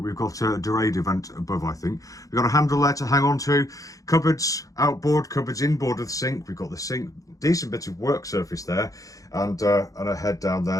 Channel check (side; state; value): right; late; 0.17 ms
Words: got a Dorado vent above, I think. We've got a handle there to hang on to. Cupboards outboard, cupboards inboard of the sink. We've got the sink, decent bit of work surface there, and a head down